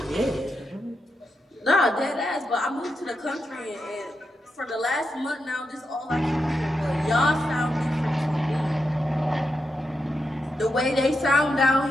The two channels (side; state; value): both; normal; correlation 0.86